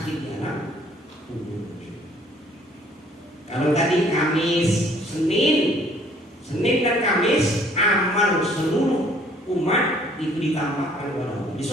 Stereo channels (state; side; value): normal; both; correlation 0.59